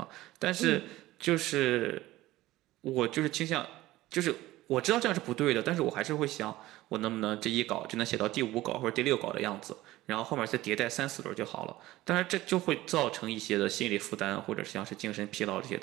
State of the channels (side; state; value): left; quieter; 17.0 dB